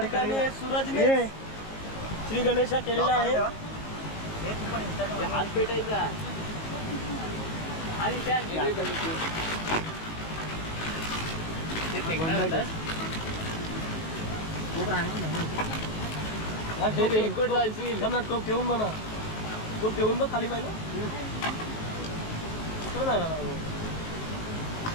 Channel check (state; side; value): late; right; 19 ms